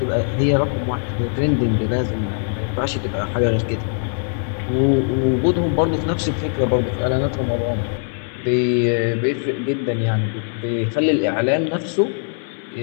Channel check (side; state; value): right; silent; 65 dB below the other